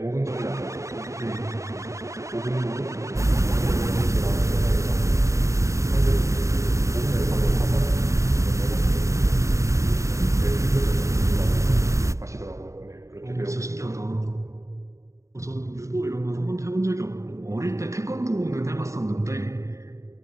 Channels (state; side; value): late; left; 0.15 ms